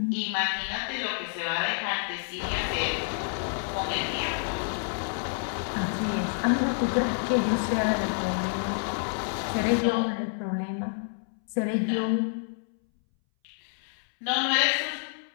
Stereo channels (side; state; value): right; silent; 59 dB below the other